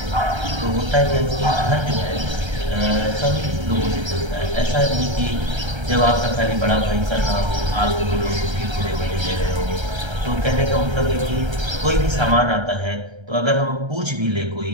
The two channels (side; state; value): left; late; 1.3 ms